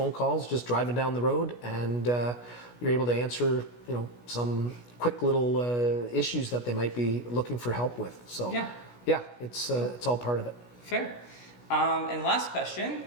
calls just driving down the road, and you're able to answer some quick little issues that they might be looking for help with. So yeah, it's all part of it. Fair. And last question,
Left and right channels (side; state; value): right; late; 16 ms